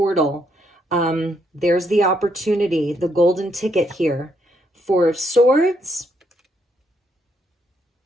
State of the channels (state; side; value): normal; both; correlation 0.74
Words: There's the opportunity, the golden ticket here. Four of Swords.